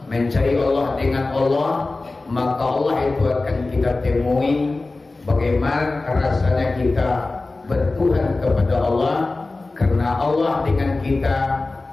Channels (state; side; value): quieter; right; 3.3 dB